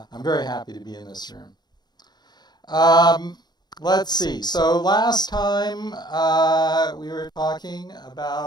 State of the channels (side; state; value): right; late; 0.20 ms